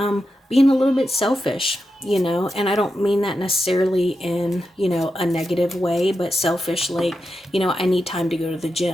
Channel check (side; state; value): both; normal; correlation 0.88